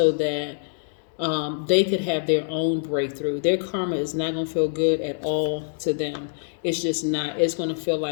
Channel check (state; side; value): silent; right; digital silence